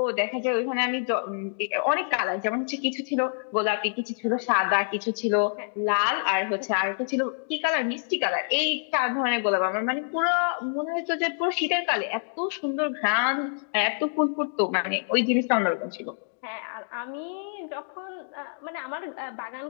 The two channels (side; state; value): right; silent; digital silence